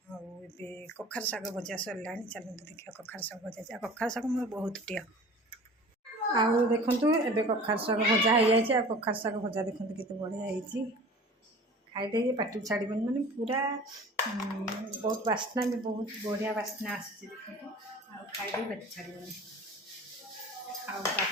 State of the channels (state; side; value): normal; both; correlation 0.42